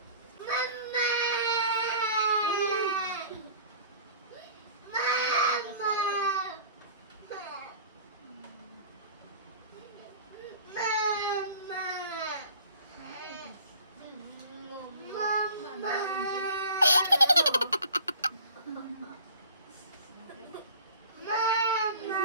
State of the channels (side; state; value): both; inverted; correlation -0.44